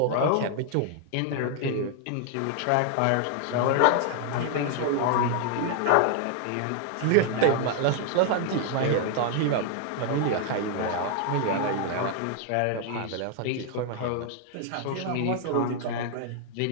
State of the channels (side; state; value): both; different; correlation 0.00